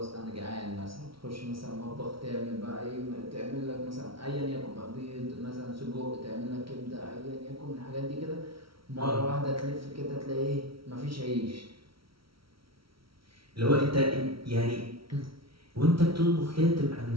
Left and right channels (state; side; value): late; left; 0.75 ms